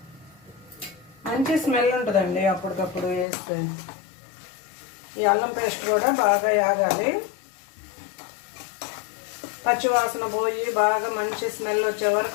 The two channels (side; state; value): right; drops out; at 3.2 s